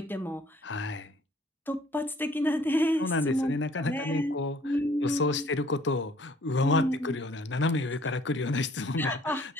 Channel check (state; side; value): normal; both; correlation 0.57